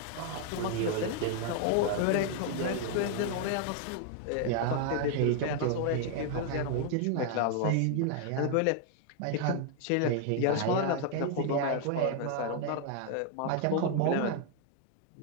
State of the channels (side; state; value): both; different; correlation 0.00